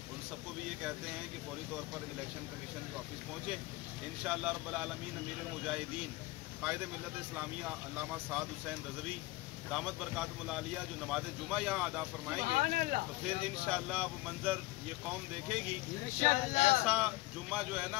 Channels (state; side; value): quieter; right; 20.0 dB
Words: उन सबको भी ये कहते हैं कि फौरी तौर पर इलेक्शन कमीशन के ऑफिस पहुँचें। इंशाअल्लाह रब्बुल आलमीन अमीरुल मुजाहिदीन कायदे मिल्लत इस्लामिया अल्लामा साद हुसैन रज़वी दामत बरकातुहुल आलिया जो नमाज जुमा यहाँ अदा फरमाएंगे तो फिर इंशाअल्लाह वो मंजर ये कौम देखेगी। ऐसा जुम्मा जो है